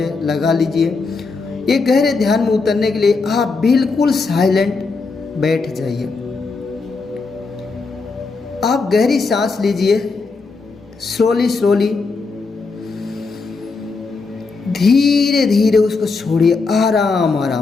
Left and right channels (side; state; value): right; quieter; 4.2 dB